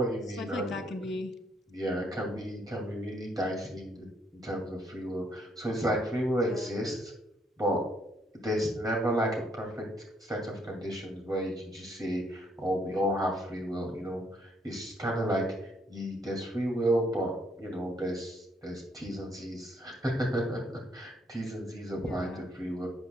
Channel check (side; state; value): both; normal; correlation 0.70